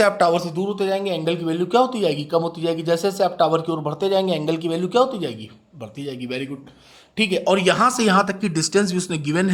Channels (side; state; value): both; identical; correlation 1.00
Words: आप टावर से दूर होते जाएंगे एंगल की वैल्यू क्या होती जाएगी? कम होती जाएगी। जैसे जैसे आप टावर की ओर बढ़ते जाएंगे एंगल की वैल्यू क्या होती जाएगी? बढ़ती जाएगी। Very good. ठीक है, और यहाँ से यहाँ तक की डिस्टेंस भी उसने गिवन